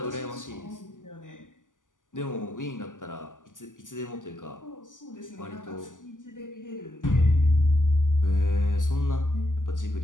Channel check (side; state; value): right; late; 0.88 ms